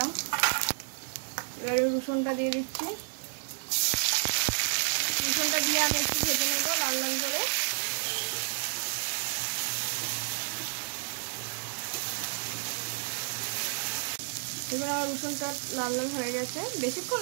এবারে রসুনটা দিয়ে দিচ্ছি। রসুনটা দিয়ে আমি একটু ভেজে নেব লাল লাল করে। এবার আমার রসুনটা লাল লাল হয়ে গেছে, বেশিক্ষণ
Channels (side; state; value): left; silent; digital silence